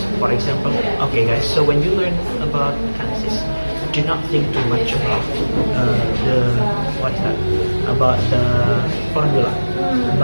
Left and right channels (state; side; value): inverted; both; correlation -1.00